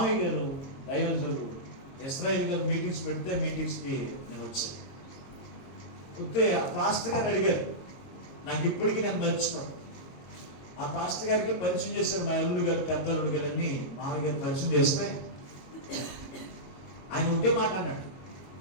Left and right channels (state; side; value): late; right; 22 ms